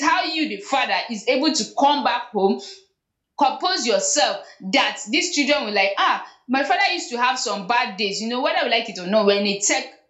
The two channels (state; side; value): identical; both; correlation 1.00